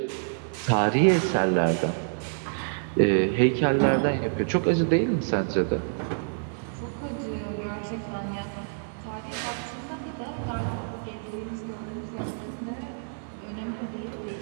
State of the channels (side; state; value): left; silent; digital silence